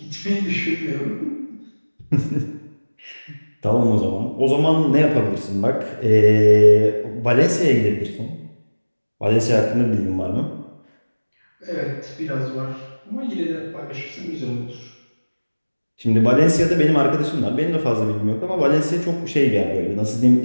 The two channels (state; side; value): inverted; both; correlation -1.00